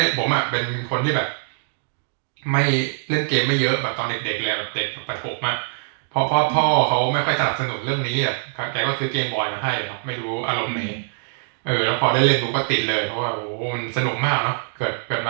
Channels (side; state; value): left; silent; digital silence